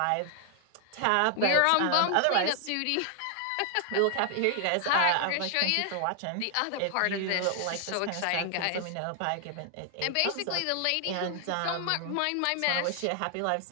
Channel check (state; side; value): different; both; correlation 0.00